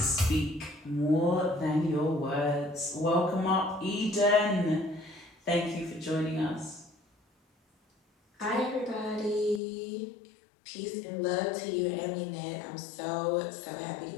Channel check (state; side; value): drops out; right; at 9.6 s